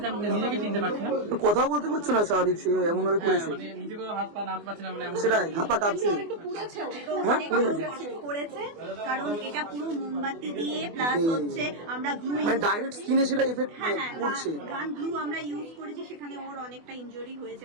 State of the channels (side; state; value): left; late; 24 ms